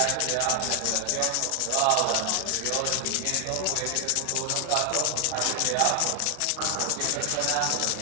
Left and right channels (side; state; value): both; different; correlation 0.00